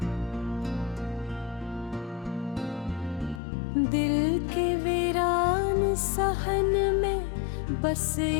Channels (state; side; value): drops out; right; at 3.4 s